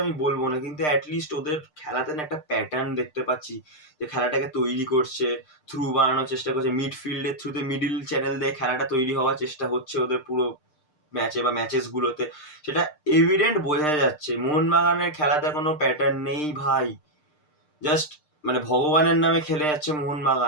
আমি বলবো না, কিন্তু অ্যাটলিস্ট ওদের খেলাতে না একটা প্যাটার্ন দেখতে পাচ্ছি, যে খেলাটাকে তৈরি করছে, থ্রু বানানোর চেষ্টা করছে, মিডফিল্ডের থ্রুতে মিডিল চ্যানেল দিয়ে খেলাটা তৈরি হওয়ার চেষ্টা হচ্ছে ওদের পুরো ম্যাচে বা ম্যাচেস গুলোতে। সেটা এভিডেন্ট বোঝা যাচ্ছে। মোহনবাগানের খেলাতে কোনো প্যাটার্ন নেই ভাই, জাস্ট মানে ভগবানের নামে খেলে যাচ্ছে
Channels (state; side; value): late; right; 6.6 ms